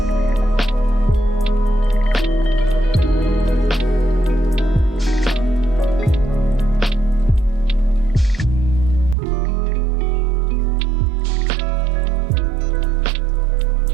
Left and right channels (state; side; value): drops out; left; at 9.2 s